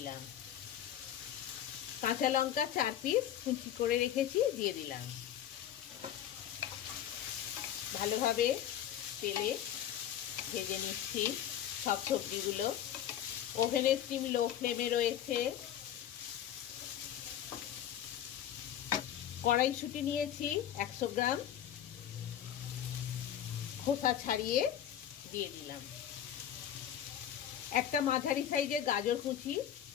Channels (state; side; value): quieter; right; 10.6 dB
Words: কাঁচা লঙ্কা 4 পিস কুচি করে রেখেছি, দিয়ে দিলাম। ভালোভাবে তেলে ভেজে নিচ্ছি সব সবজিগুলো। ওভেনের স্টিম লো ফ্লেমে রয়েছে। কড়াইশুঁটি নিয়েছি 100 গ্রাম, খোসা ছাড়িয়ে দিয়ে দিলাম। একটা মাঝারি সাইজের গাজর কুচি